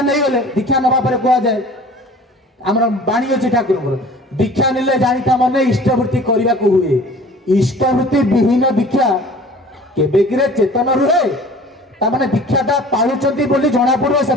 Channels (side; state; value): both; normal; correlation 0.46